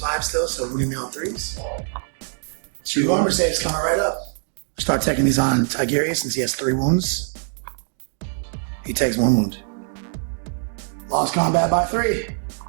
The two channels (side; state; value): left; silent; digital silence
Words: still, so we're going to be on 3s. 2 armor saves coming right up. Start taking these on Tigerius since he has 3 wounds. He takes 1 wound. Lost combat by 3.